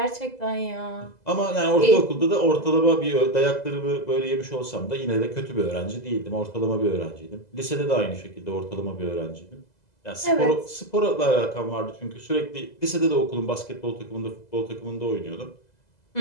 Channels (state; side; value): late; right; 2.0 ms